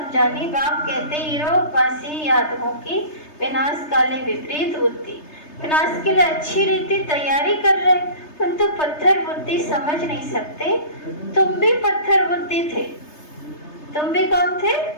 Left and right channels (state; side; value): late; right; 3.3 ms